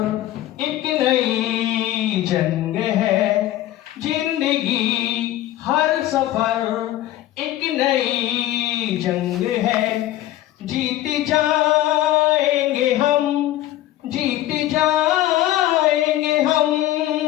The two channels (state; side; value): quieter; right; 14.2 dB